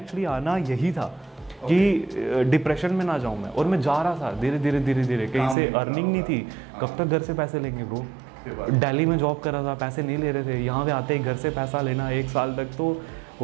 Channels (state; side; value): drops out; left; at 5.6 s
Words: आना यही था कि डिप्रेशन में ना जाऊँ मैं, और मैं जा रहा था धीरे धीरे कहीं से अर्निंग नहीं थी। कब तक घर से पैसे लेंगे ब्रो। दिल्ली में जॉब कर रहा था, पैसे नहीं ले रहे थे, यहाँ पे आते ही घर से पैसा लेना 1 साल तक, तो